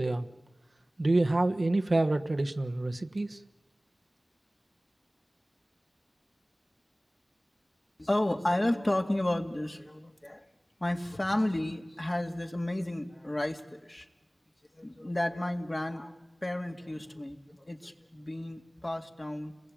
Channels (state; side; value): normal; both; correlation 0.98